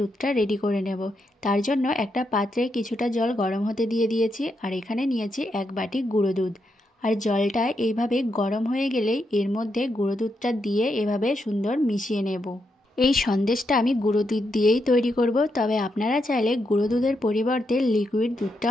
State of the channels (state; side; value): normal; both; correlation 0.82